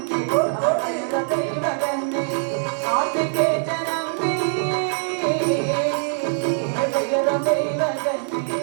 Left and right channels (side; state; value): left; silent; digital silence